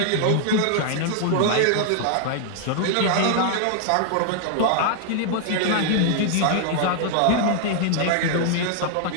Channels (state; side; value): different; both; correlation 0.00